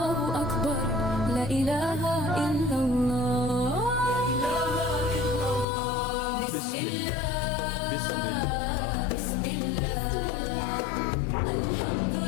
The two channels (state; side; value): drops out; right; at 5.7 s